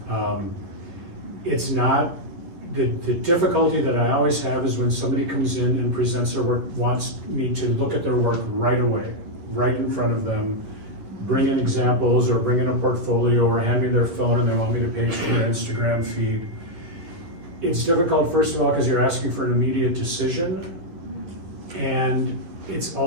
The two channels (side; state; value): left; late; 11 ms